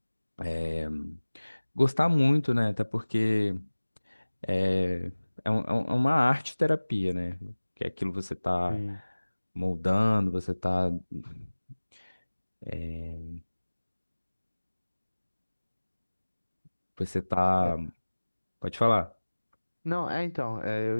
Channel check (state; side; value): inverted; both; correlation -1.00